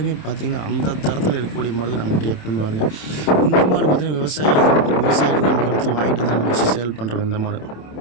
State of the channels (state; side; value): late; right; 27 ms